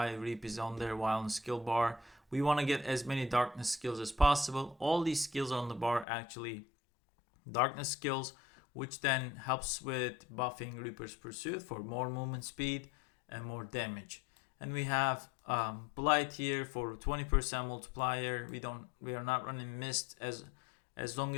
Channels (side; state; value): right; drops out; at 6.1 s